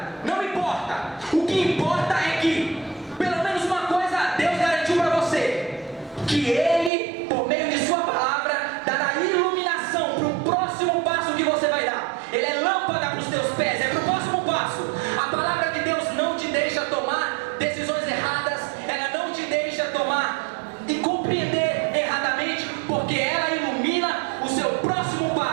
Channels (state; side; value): drops out; left; at 6.9 s